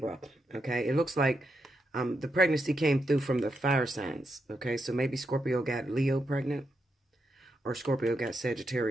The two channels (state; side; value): normal; both; correlation 0.83